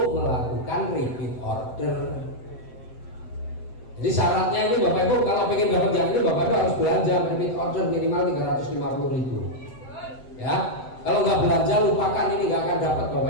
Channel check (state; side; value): late; right; 7.8 ms